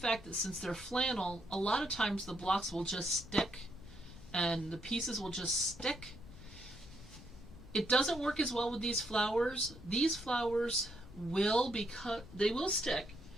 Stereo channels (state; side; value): noise; left; rumble, 17 dB below the sound